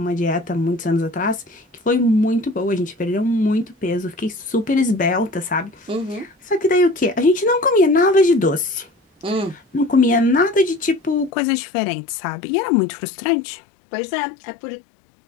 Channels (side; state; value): right; drops out; at 11.3 s